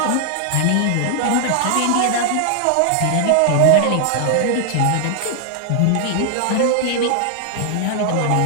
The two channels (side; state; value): both; different; correlation 0.00